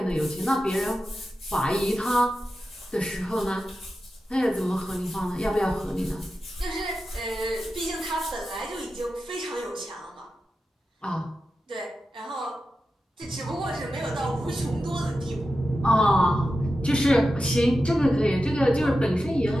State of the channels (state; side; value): normal; both; correlation 0.92